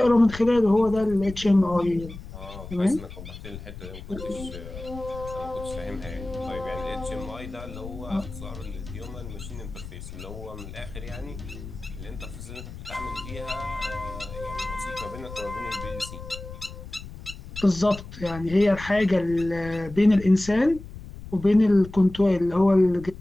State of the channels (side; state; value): left; noise; rumble, 13 dB below the sound